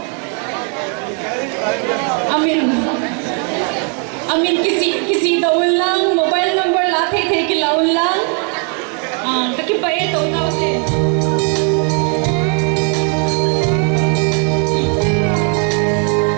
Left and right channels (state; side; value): quieter; left; 40.0 dB